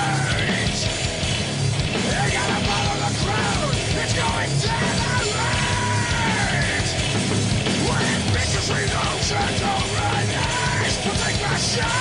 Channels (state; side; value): identical; both; correlation 1.00